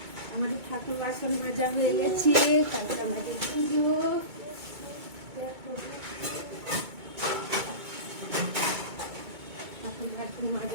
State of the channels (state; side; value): late; left; 2.2 ms